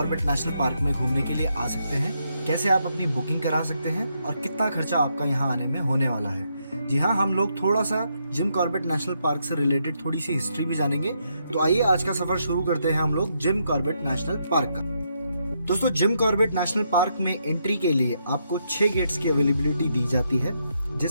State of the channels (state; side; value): inverted; both; correlation -0.78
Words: नेशनल पार्क में घूमने के लिए आ सकते हैं, कैसे आप अपनी बुकिंग करा सकते हैं और कितना खर्चा आपका यहाँ आने में होने वाला है। जी हाँ, हम लोग थोड़ा सा जिम कॉर्बेट नेशनल पार्क से रिलेटेड थोड़ी सी हिस्ट्री भी जानेंगे। तो आइए आज का सफर शुरू करते हैं हम लोग जिम कॉर्बेट नेशनल पार्क का। दोस्तों, जिम कॉर्बेट नेशनल पार्क में एंट्री के लिए आपको 6 गेट्स की अवेलेबिलिटी दी जाती है,